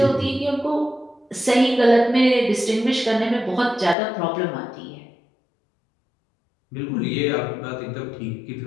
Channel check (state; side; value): drops out; right; at 4.0 s